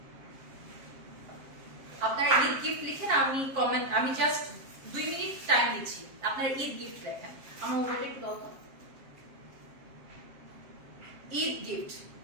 আপনারা ঈদ গিফট লিখেন, আমি জাস্ট 2 মিনিট টাইম দিচ্ছি, আপনারা ঈদ গিফট লেখেন। আমার মোবাইলটা একটু দাও তো। ঈদ গিফট।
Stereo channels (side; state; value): left; late; 7.4 ms